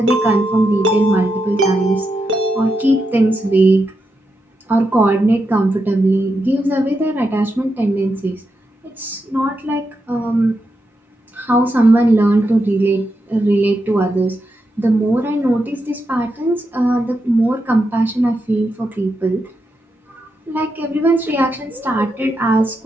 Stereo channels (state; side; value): normal; both; correlation 0.85